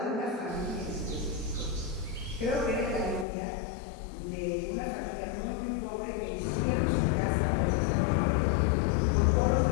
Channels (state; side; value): drops out; right; at 3.2 s